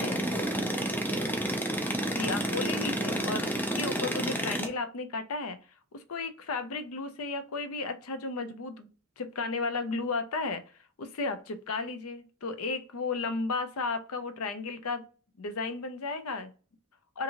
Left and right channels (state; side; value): normal; both; correlation 0.20